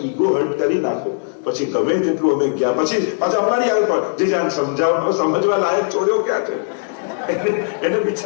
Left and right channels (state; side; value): silent; right; 67 dB below the other